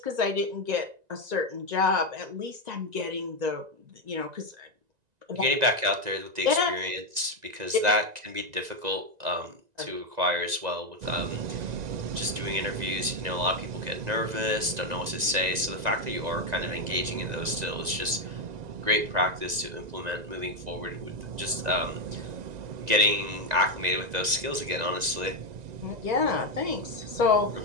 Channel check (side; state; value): left; late; 1.9 ms